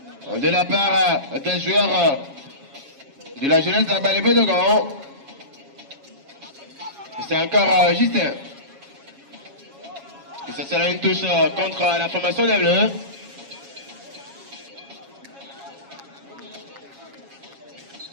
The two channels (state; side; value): late; left; 7.3 ms